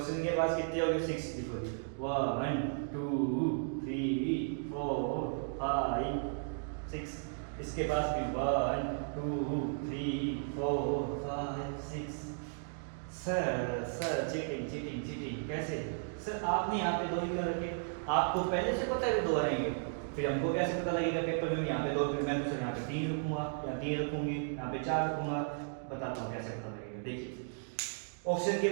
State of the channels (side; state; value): left; silent; digital silence